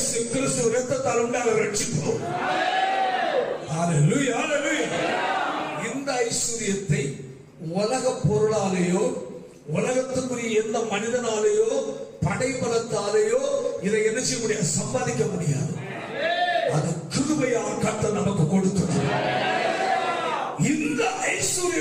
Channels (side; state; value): both; identical; correlation 1.00